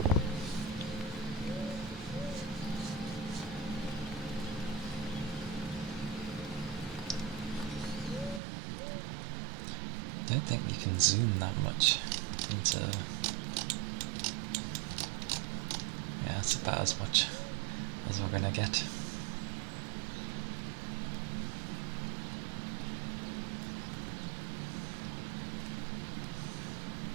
I don't think you can zoom that much into... Yeah, it's about as much as we're gonna get.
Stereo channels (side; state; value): left; drops out; at 8.4 s